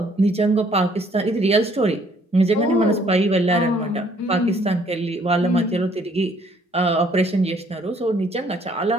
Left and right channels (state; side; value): normal; both; correlation 0.63